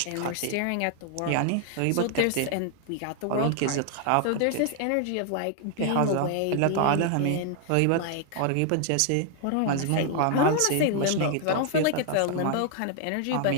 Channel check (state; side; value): different; both; correlation 0.00